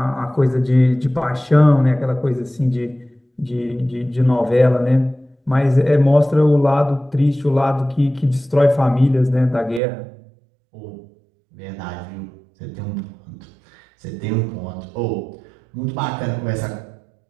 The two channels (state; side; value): drops out; left; at 9.8 s